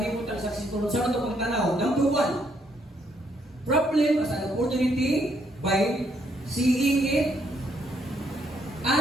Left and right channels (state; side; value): normal; both; correlation 0.72